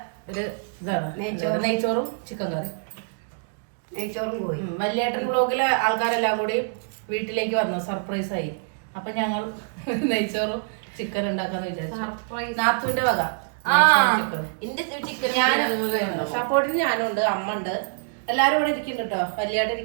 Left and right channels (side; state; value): left; silent; digital silence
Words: ഒരു ഇതാണ് നെയ്ച്ചോറും ചിക്കൻ കറി. നെയ്ച്ചോറും പോയി. വല്യേട്ടൻ ബ്ലോഗിലെ ആൾക്കാരെല്ലാം കൂടി വീട്ടിലേക്ക് വന്നു, സർപ്രൈസ് ആയി. അപ്പൊ ഞങ്ങൾ നെയ്ച്ചോറും ചിക്കൻ ഉണ്ടാക്കാന്ന് വിചാരിച്ചു. നാത്തുവിന്റെ വക ചിക്കൻ. ഞാൻ സപ്പോർട്ടിന് ഞാനും ഉണ്ട്, അമ്മ ഉണ്ട്, എല്ലാരും ഇവിടെ ഇരിക്കുന്നുണ്ട് കേട്ടോ. വല്യേട്ടൻ